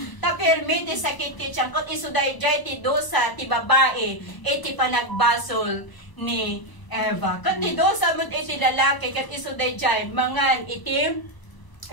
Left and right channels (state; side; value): late; right; 1.0 ms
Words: Tapirmiti sa kititsyan, kung isuday jay ti dosa, ti babae, iti pa nagbasol ni Eva. Kung ti dosa mo iti lalaki, kat isuday jay, mangan itim,